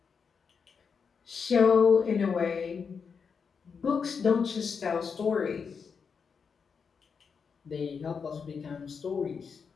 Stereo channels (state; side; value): quieter; right; 5.9 dB